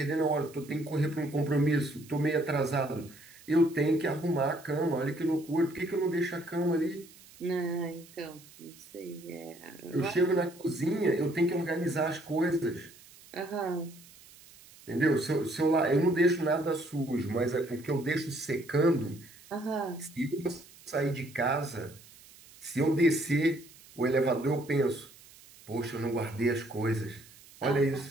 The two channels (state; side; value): noise; right; hiss, 23 dB below the sound